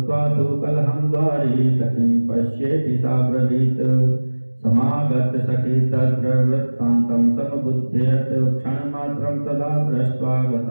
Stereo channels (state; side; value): inverted; both; correlation -1.00